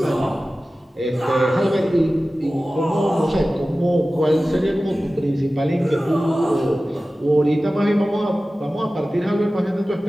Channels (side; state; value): both; normal; correlation 0.96